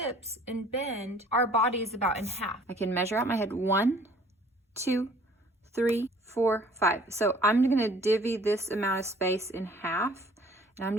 and bend, our body is about in half. I can measure out my head. 1, 2, 3, 4, 5. So I'm gonna divvy this amount of space in half, and I'm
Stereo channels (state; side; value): normal; both; correlation 0.54